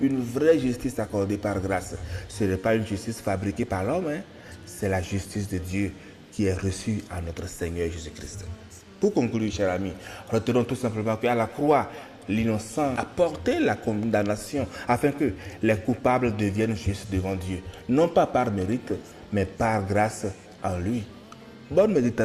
vraie justice accordée par grâce. Ce n'est pas une justice fabriquée par l'homme, c'est la justice de Dieu qui est reçue à notre Seigneur Jésus-Christ. Pour conclure, chers amis, retenons tout simplement qu'à la croix, l'innocent a porté la condamnation afin que les coupables deviennent justes devant Dieu, non pas par mérite, mais par grâce en lui. Bonne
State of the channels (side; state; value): both; identical; correlation 1.00